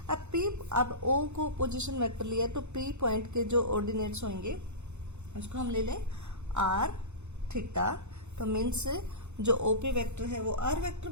अब P, अब O को पोजीशन वेक्टर लिया, तो P पॉइंट के जो ऑर्डिनेट्स होंगे उसको हम ले लें R थीटा, तो मीन्स जो OP वेक्टर है वो R वेक्टर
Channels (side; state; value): left; late; 0.82 ms